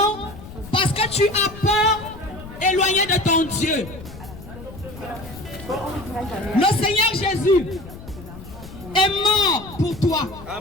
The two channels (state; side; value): noise; left; rumble, 15 dB below the sound